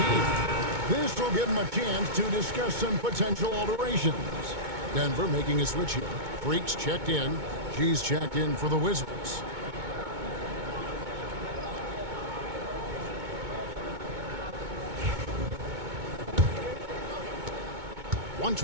This will give him a chance to discuss some potential alterations. Denver making a switch here. Freaks checked in. G's checked in for the Wizards.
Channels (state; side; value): late; left; 2.2 ms